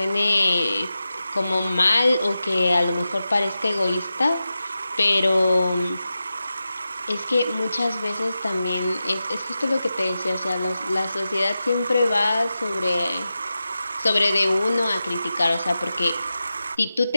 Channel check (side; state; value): both; inverted; correlation -0.92